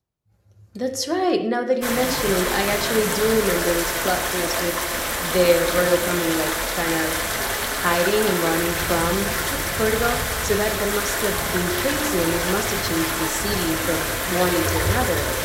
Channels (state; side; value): identical; both; correlation 1.00